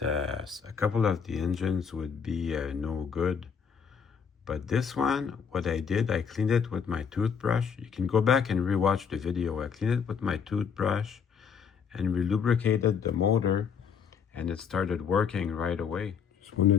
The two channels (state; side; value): quieter; right; 6.7 dB